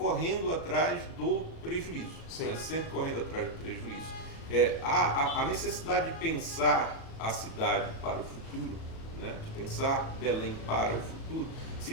atrás do prejuízo, né, sempre correndo atrás do prejuízo. A necessidade de pensar a cidade para o futuro, né, de pensar Belém para o futuro,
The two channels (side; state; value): right; late; 37 ms